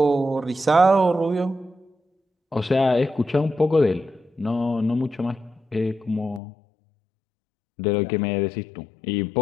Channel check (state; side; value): drops out; right; at 6.4 s